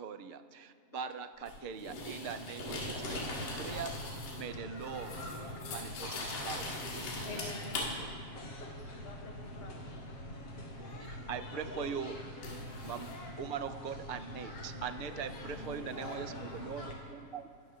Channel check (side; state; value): right; late; 7.4 ms